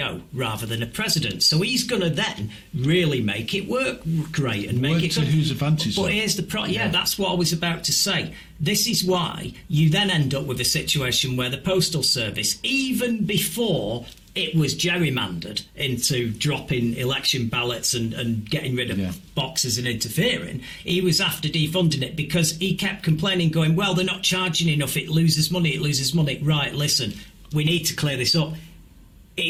rather than a president. So he's going to then really make it work great and make it to whose advantage. But here's the problem. Yeah, that's what I was about to say. This is why you then end up with a situation where the Postal Service, even before it was gerrymandered into dropping election ballots and getting rid of boxes and interfering, he was after defunding it because he kept complaining, going, well, they're not charging enough, it loses money. Right, listen, we need to clear this up.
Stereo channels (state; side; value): identical; both; correlation 1.00